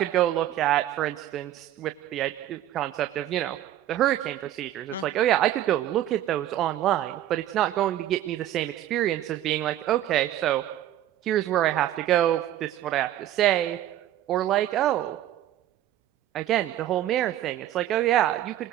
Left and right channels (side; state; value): left; quieter; 12.6 dB